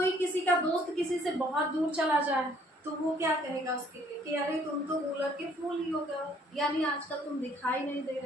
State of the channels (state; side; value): normal; both; correlation 0.61